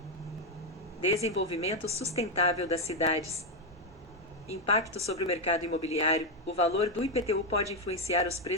desenvolvimento sustentável das cidades. Impacto sobre o mercado imobiliário, o valor do IPTU pode influenciar os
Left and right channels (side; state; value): both; normal; correlation 0.05